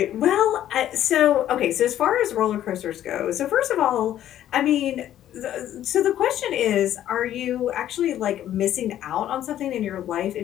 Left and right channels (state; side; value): quieter; right; 11.8 dB